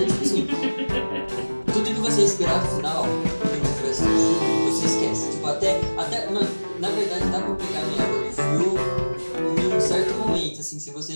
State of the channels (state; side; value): inverted; both; correlation -1.00